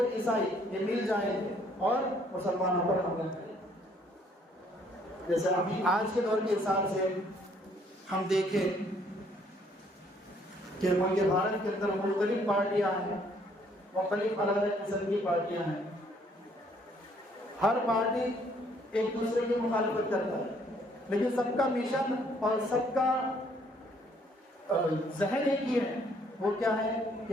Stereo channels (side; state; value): both; normal; correlation 0.64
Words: عیسائی یہ مل جائیں گے اور مسلمانوں پر حملہ کریں گے۔ جیسے ابھی آج کے دور کے حساب سے ہم دیکھیں کہ ملک بھارت کے اندر مختلف پارٹیاں ہیں، مختلف الگ الگ قسم کی پارٹیاں ہیں، ہر پارٹی ایک دوسرے کی مخالفت کرتا ہے، لیکن سب کا مشن اور سب کا ذہن ایک ہی ہے، وہ کیا ہے